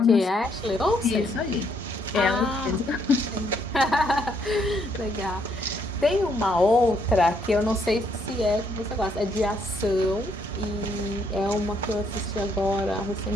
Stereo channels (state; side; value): normal; both; correlation 0.71